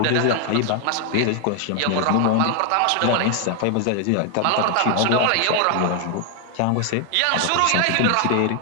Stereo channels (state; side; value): different; both; correlation 0.00